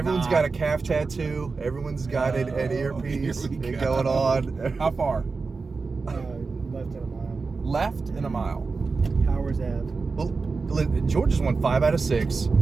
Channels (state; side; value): quieter; left; 4.3 dB